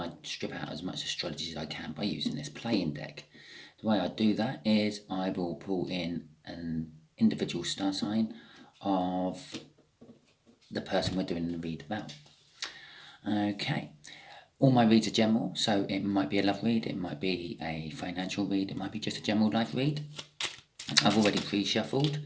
strip out as much astrology as I can by using this playing deck. The way I do that is I will pull in an individual star sign of the person we're doing the read about. Okay. All my reads are general, so it might be a love read, it might be a financial read, it might be just a general life read. I've already pre-shuffled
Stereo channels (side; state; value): both; identical; correlation 1.00